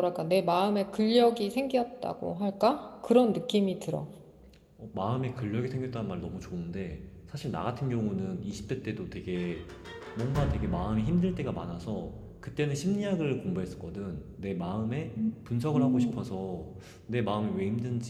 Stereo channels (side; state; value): both; identical; correlation 1.00